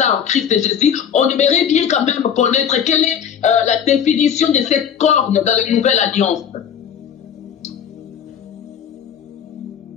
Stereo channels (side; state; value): right; quieter; 8.2 dB